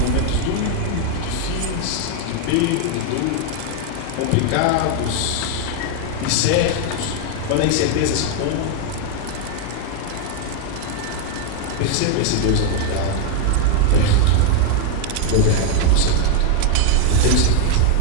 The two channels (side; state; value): both; different; correlation 0.01